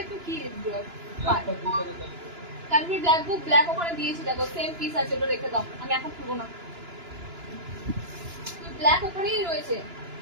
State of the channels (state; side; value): late; left; 2.9 ms